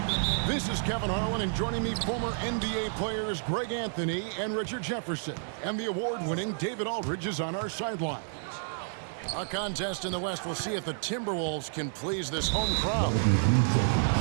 This is Kevin Harlan, and joining me, former NBA players Greg Anthony and Richard Jefferson. And the award-winning David Aldridge is on our sidelines. A contest in the West. We'll see if the Timberwolves can please this home crowd.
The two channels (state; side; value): silent; left; digital silence